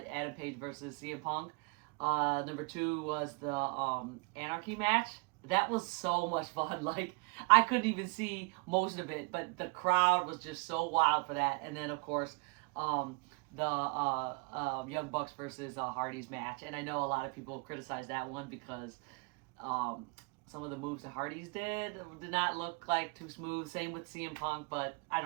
Page versus CM Punk. Number two was the Anarchy match. That was so much fun. Like I couldn't even see most of it, but the crowd was just so wild for that. And then of course, the Young Bucks versus Hardy's match. And I know a lot of people criticize that one because um, some of the moves that Hardy's did not look like too smooth. Same with CM Punk, but I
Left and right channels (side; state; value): left; quieter; 31.7 dB